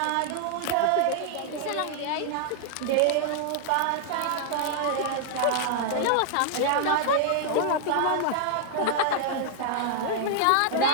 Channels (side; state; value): both; different; correlation -0.01